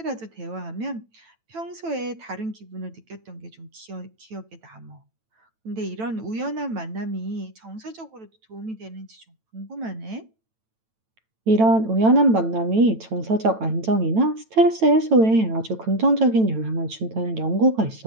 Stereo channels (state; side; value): late; left; 9.0 ms